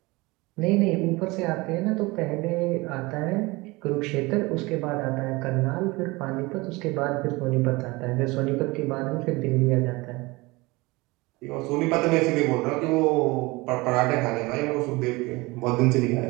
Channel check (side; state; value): left; quieter; 23.2 dB